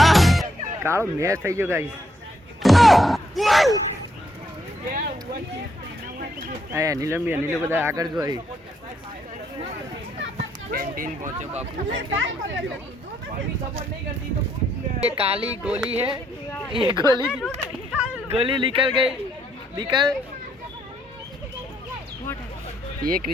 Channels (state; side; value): normal; both; correlation 0.73